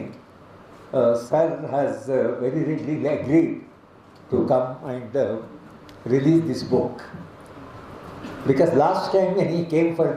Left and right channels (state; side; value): identical; both; correlation 1.00